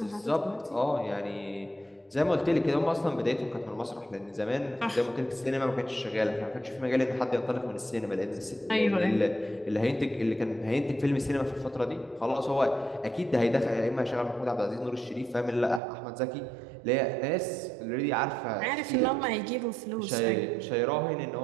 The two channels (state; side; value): drops out; left; at 15.8 s